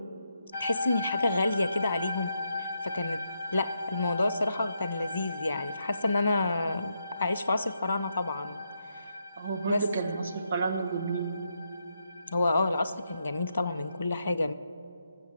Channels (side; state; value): both; inverted; correlation -0.81